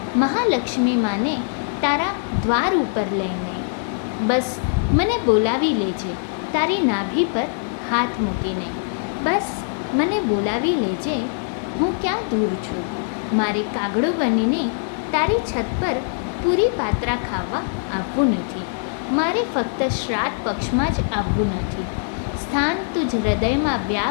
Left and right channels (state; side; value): silent; right; digital silence